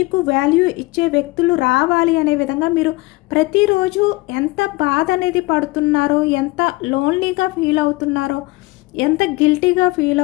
వాల్యూ ఇచ్చే వ్యక్తులు రావాలి అనే విధంగా మీరు ప్రతిరోజు ఎంత బాధ అనేది పడుతున్నారో, ఎంత లోన్లీగా ఫీల్ అవుతున్నారో, ఎంత గిల్టీగా ఫీల్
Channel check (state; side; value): quieter; right; 22.5 dB